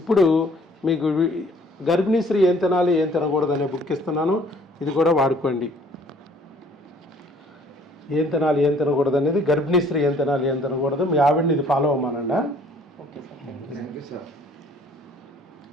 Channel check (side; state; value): both; normal; correlation 0.57